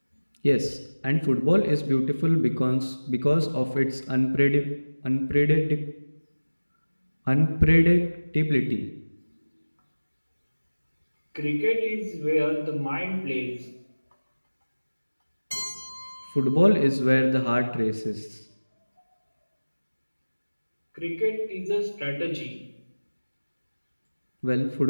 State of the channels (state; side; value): inverted; both; correlation -1.00